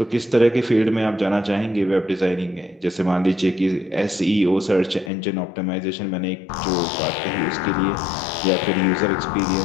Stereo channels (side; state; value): right; drops out; at 5.1 s